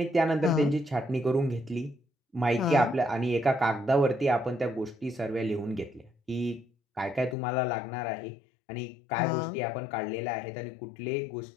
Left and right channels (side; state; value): right; drops out; at 7.4 s